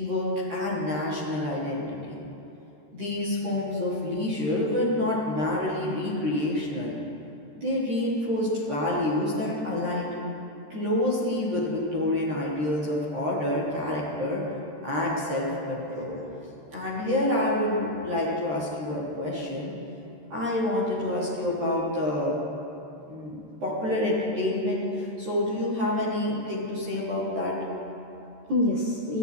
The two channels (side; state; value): left; late; 13 ms